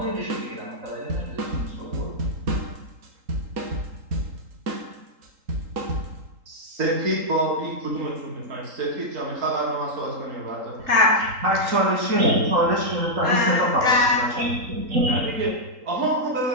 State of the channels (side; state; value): left; late; 3.8 ms